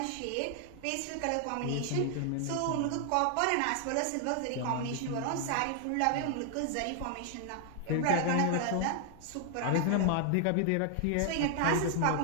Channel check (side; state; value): both; different; correlation 0.00